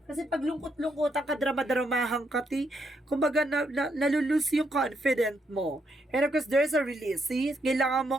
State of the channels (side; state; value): both; normal; correlation 0.77